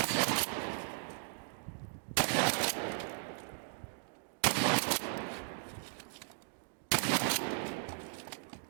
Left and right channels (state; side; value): silent; left; digital silence